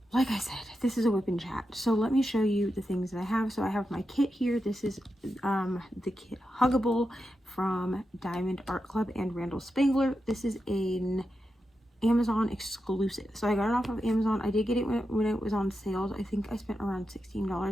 like I said, this is a WIP Chat. So let me show you the things that I have. So I have my kit here. This is the kit Huggable from Diamond Art Club and Randall Spangler. This is an Amazon exclusive. So I got it off of Amazon. I did get it when it was on sales. I think I spent around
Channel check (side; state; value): both; normal; correlation 0.88